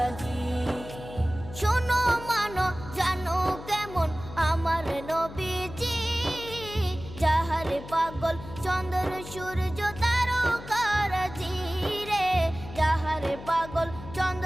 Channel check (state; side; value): noise; left; hum, 14 dB below the sound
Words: শোনো মানো জানো কেমন আমার নবীজি, যাহার পাগল চন্দ্র সূর্য তারকারাজি রে, যাহার পাগল